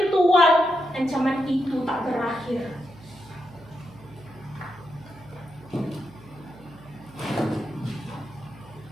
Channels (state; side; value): noise; right; hum, 21 dB below the sound